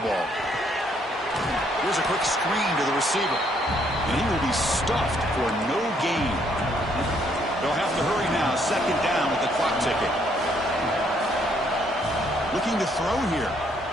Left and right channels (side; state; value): both; normal; correlation 0.69